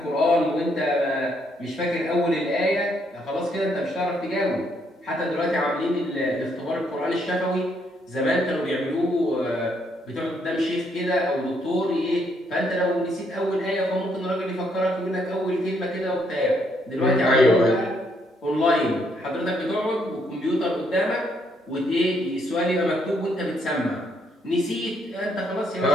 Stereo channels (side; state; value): both; normal; correlation 0.72